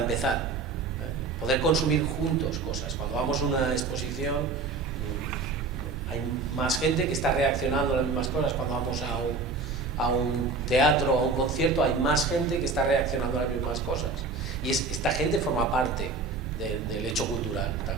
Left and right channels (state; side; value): quieter; left; 4.0 dB